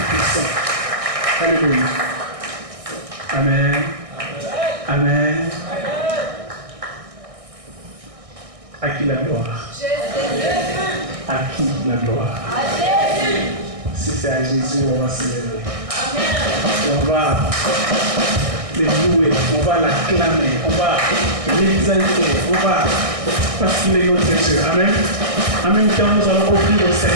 Alléluia. Amen. Amen. À qui la gloire? À qui la gloire? Si c'est à Jésus, on va célébrer. On va les louer, on va l'acclamer, on va l'exalter, on va parce qu'il est notre Dieu. Amen. En même temps, nous allons offrir au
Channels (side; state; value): left; late; 1.6 ms